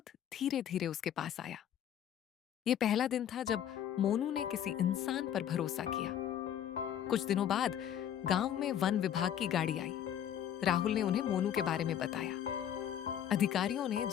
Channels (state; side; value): quieter; right; 10.0 dB